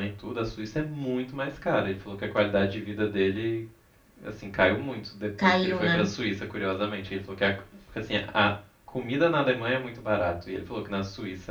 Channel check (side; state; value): both; identical; correlation 1.00